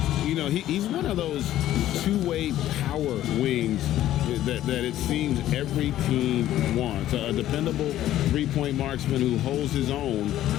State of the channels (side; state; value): right; quieter; 13.1 dB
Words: You know, he's one of those two-way power wings that it seems every team wants. A dependable three-point marksman who holds his own